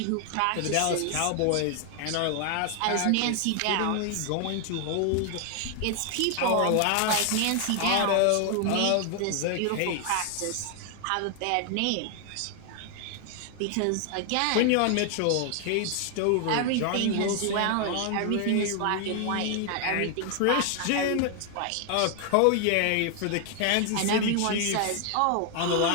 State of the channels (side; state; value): both; different; correlation 0.00